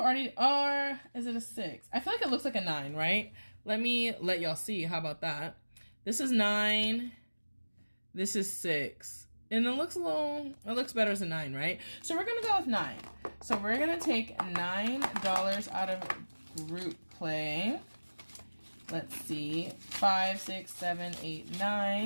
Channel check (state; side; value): inverted; both; correlation -1.00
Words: already, or is it a 6? I feel like it looks like a 9, right? Let me let y'all see. How about that? This is 9. This is 6. And it looks better as a 9, right? So we're gonna go with 9. So we're gonna take $9 out of group play. Let's see, 5, 6, 7, 8,